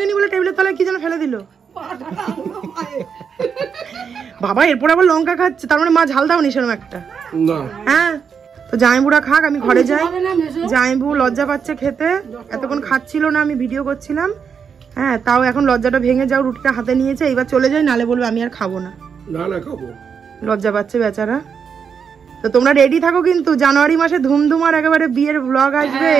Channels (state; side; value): quieter; left; 6.6 dB